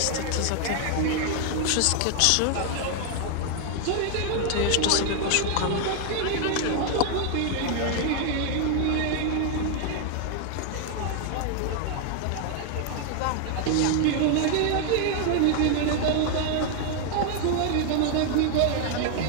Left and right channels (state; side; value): different; both; correlation 0.00